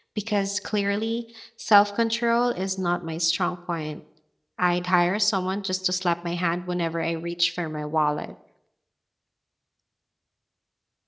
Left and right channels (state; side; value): identical; both; correlation 1.00